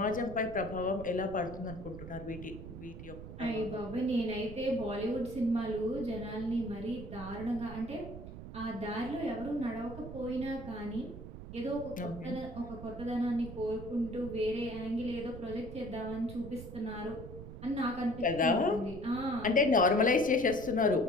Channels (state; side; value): noise; right; rumble, 11 dB below the sound